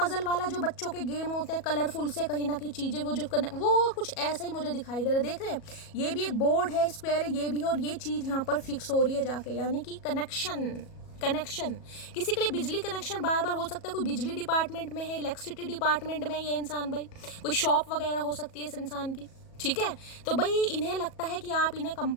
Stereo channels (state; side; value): late; right; 37 ms